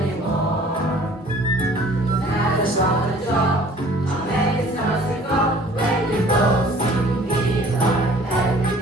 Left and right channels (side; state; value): both; normal; correlation 0.52